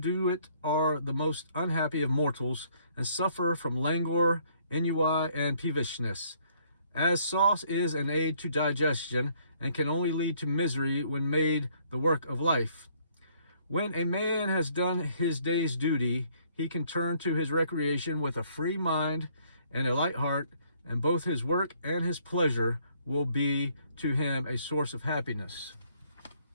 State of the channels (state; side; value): inverted; both; correlation -0.65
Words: it are the most unhappy of mortals, and suffer from languor, ennui, and peevishness. As sauce is an aid to digestion, and can only lead to misery when made the work of life. When a man has done his day's duty, he can turn to his recreation with a free mind and a light heart, and both his work and his pleasure will be to him a source of happiness.